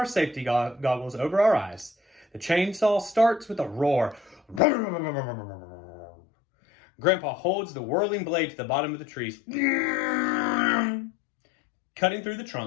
safety goggles over our eyes. The chainsaw starts with a roar. Grandpa holds the whirling blade to the bottom of the trees. Cutting through the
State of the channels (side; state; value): right; drops out; at 4.6 s